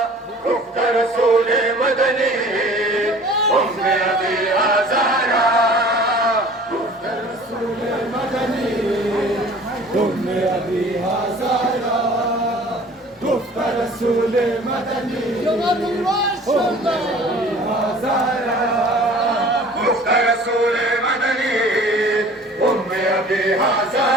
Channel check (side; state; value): both; normal; correlation 0.47